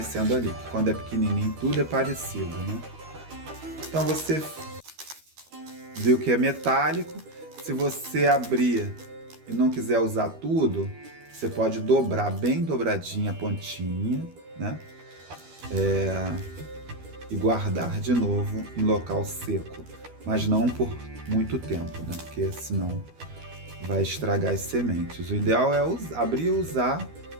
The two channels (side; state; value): left; late; 12 ms